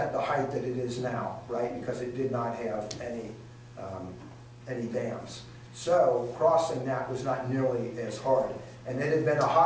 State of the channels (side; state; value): both; identical; correlation 1.00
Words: the height that it is now, right? Because it did not have any dams. So crossing that was not nearly as hard. And it had been a